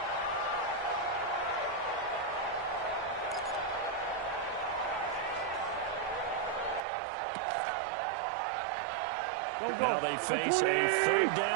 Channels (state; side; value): drops out; left; at 6.8 s